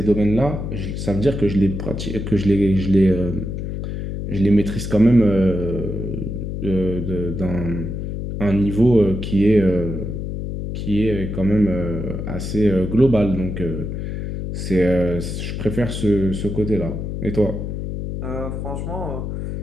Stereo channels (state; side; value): noise; left; hum, 5 dB below the sound